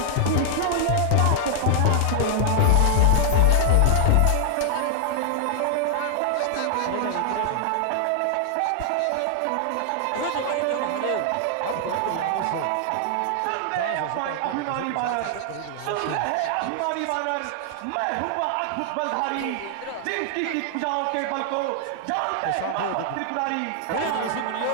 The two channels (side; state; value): both; different; correlation 0.00